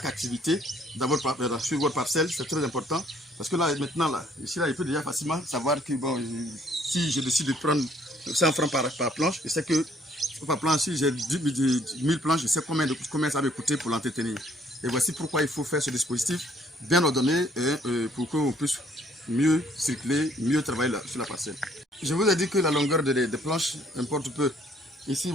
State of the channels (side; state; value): both; normal; correlation 0.63